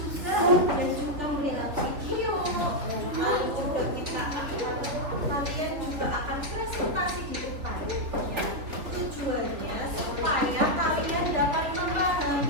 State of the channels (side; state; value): left; late; 3.7 ms